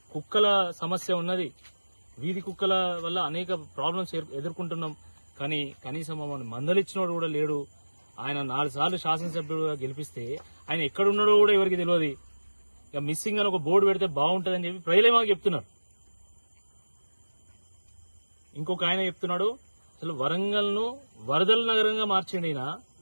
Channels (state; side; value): inverted; both; correlation -1.00